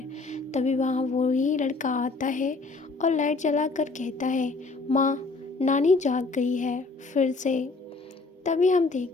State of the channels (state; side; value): quieter; right; 3.7 dB